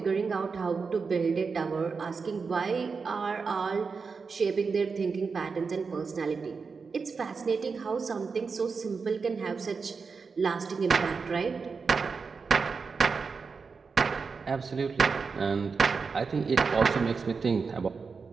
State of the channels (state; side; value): quieter; left; 5.0 dB